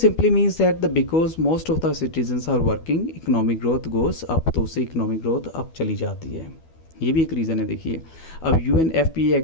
means that the because most of the citizens are working, economic growth goes up, तो उससे इकोनॉमिक ग्रोथ अप चली जाती है. ये भी एक रीज़न है. देखिए अब UNFPA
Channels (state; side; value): late; right; 12 ms